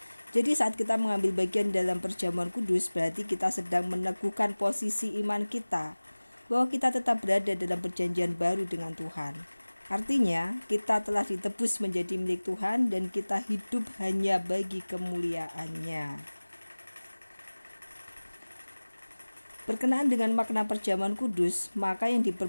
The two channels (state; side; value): inverted; both; correlation -1.00